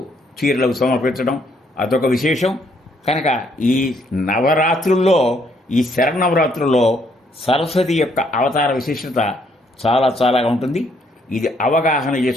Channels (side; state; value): both; normal; correlation 0.69